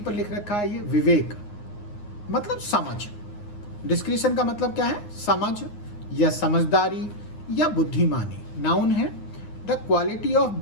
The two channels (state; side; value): late; right; 9.6 ms